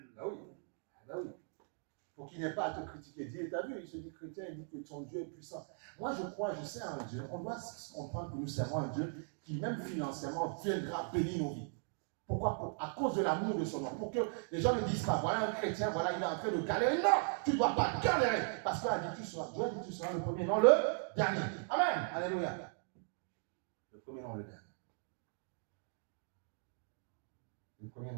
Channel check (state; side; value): silent; left; 52 dB below the other